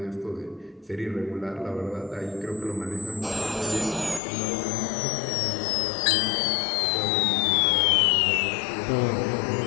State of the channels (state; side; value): drops out; right; at 4.2 s